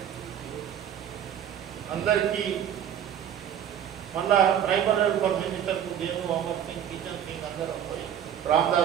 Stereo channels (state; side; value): quieter; left; 9.5 dB